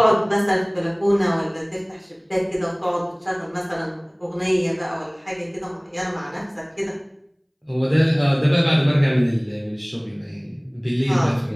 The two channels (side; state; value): both; identical; correlation 1.00